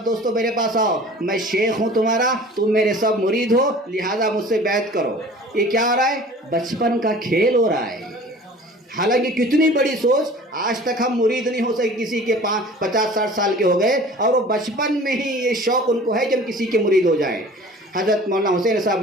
دوستوں میرے پاس آؤ، میں شیخ ہوں تمہارا، تم میرے سب مرید ہو، لہٰذا مجھ سے بیعت کرو۔ یہ کیا ہو رہا ہے؟ بچپن کا کھیل ہو رہا ہے۔ حالانکہ کتنی بڑی سوچ، آج تک ہم مرید نہیں ہو سکے کسی کے 50-60 سال کے ہو گئے، اور وہ بچپن میں ہی یہ شوق ان کو ہے کہ ہم کسی کے مرید ہو جائیں۔ حضرت مولانا حسین صاحب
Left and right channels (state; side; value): normal; both; correlation 0.44